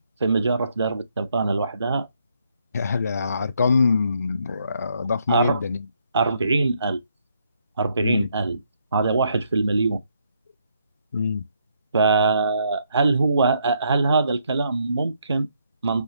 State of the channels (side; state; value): both; inverted; correlation -0.73